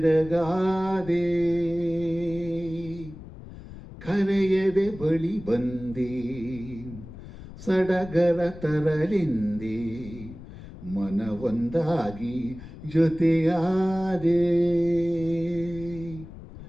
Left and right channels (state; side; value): noise; left; rumble, 15 dB below the sound